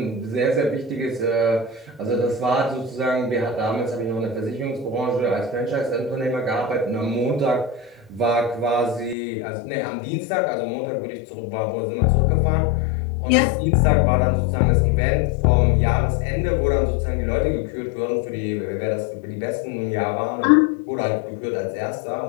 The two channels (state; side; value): drops out; right; at 9.2 s